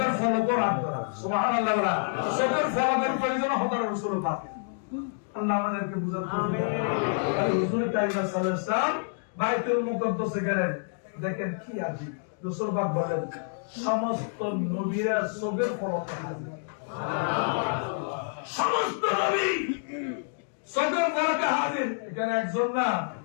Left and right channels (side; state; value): right; silent; digital silence